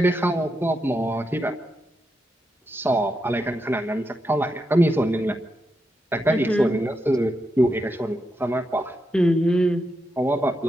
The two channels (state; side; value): normal; both; correlation 0.84